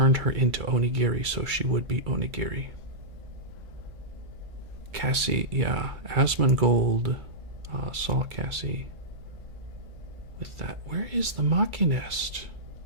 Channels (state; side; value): late; left; 2.3 ms